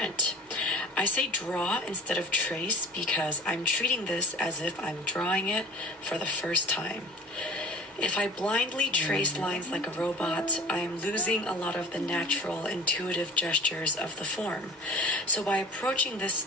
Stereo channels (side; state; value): both; normal; correlation 0.42